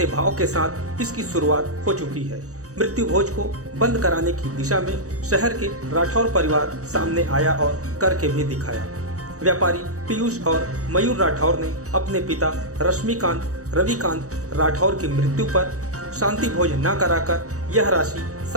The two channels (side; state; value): left; late; 0.66 ms